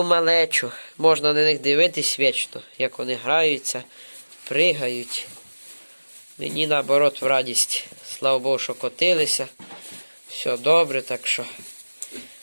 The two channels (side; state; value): both; inverted; correlation -1.00